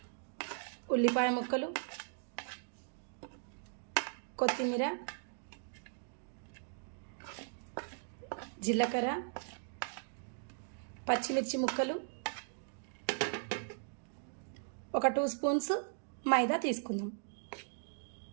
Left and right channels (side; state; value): left; silent; digital silence